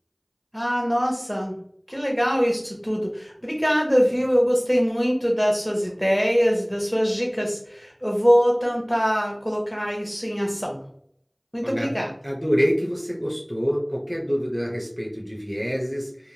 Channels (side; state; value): both; identical; correlation 1.00